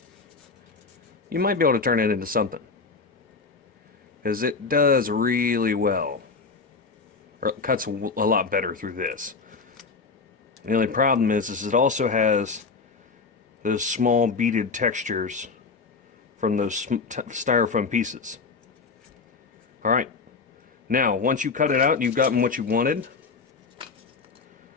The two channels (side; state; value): right; quieter; 4.5 dB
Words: you might be able to turn it into something. Because it does really well. Or it cuts a lot better through this. The only problem is it also has those small beaded textures from those styrofoam pieces. Alright, now once you cut it out and you've gotten what you wanted,